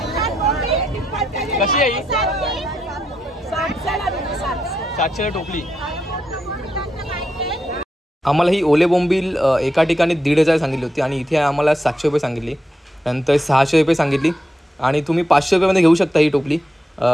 कशी आहे? 700 टोपली. आम्हाला ही ओले बोंबील एका ठिकाणी 1,500 सांगितली होती आणि इथे आम्हाला 700 रुपये सांगितली. नंतर 600 रुपये सांगितली. आणि तुम्ही 500 रुपयामध्ये घेऊ शकता ही टोपली.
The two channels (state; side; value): normal; both; correlation 0.84